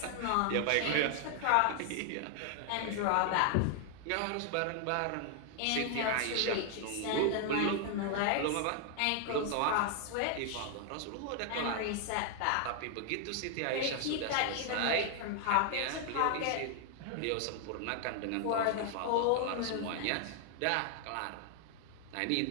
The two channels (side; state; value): both; different; correlation 0.00